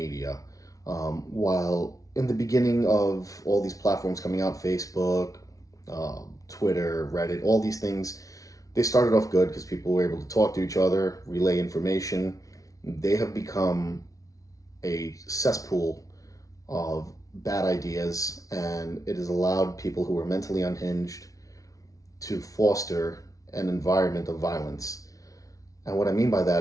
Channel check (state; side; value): late; right; 0.17 ms